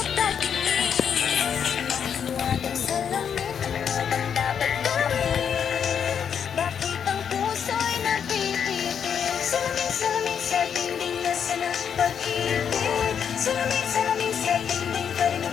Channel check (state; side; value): quieter; right; 7.7 dB